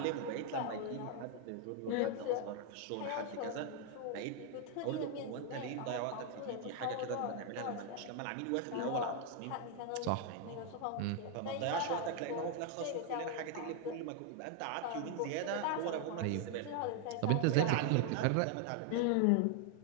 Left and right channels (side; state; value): both; different; correlation 0.00